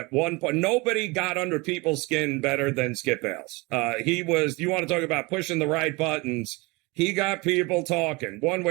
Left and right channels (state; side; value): quieter; left; 25.4 dB